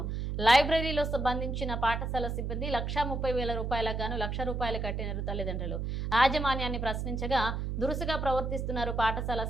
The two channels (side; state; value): right; noise; hum, 2 dB below the sound